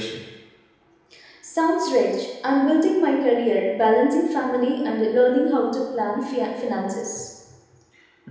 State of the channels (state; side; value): identical; both; correlation 1.00